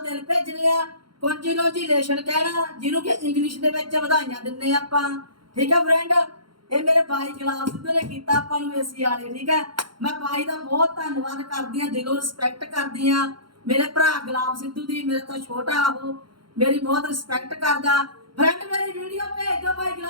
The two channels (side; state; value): left; late; 0.73 ms